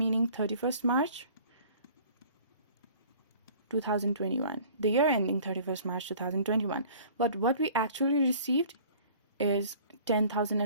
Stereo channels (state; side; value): inverted; both; correlation -0.50